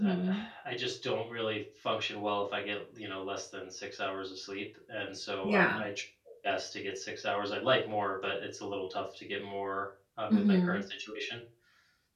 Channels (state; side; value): identical; both; correlation 1.00